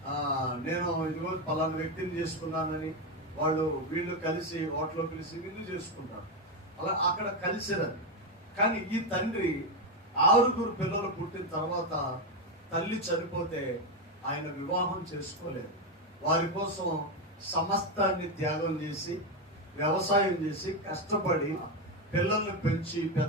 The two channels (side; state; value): both; normal; correlation 0.09